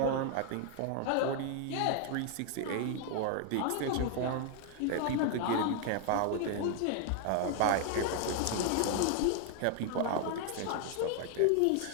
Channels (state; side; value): different; both; correlation 0.00